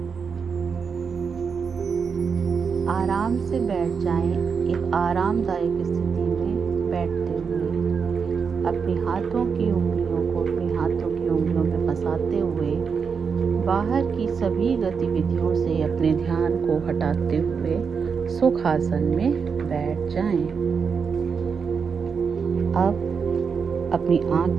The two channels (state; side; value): quieter; left; 5.9 dB